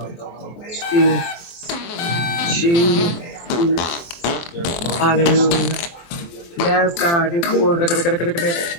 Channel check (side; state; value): right; late; 23 ms